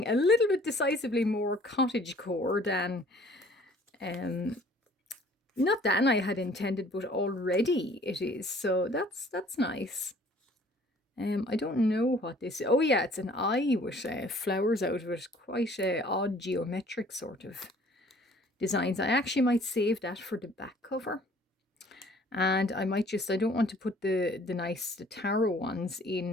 a little bit decisively more cottagecore than, not than I had intended, but already it is. So that's nice. I don't know what this is. Oh yeah, it's an eye with flowers out of it. Quite odd geometric sort of designs. I actually might save that for the back cover. And I might just, I don't want to put the tarot ones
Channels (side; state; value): both; normal; correlation 0.55